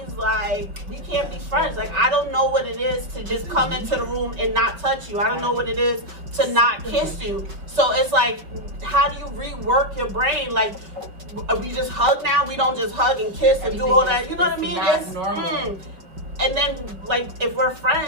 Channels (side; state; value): left; late; 5.3 ms